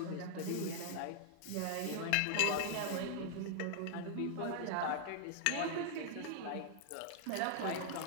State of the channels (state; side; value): different; both; correlation -0.01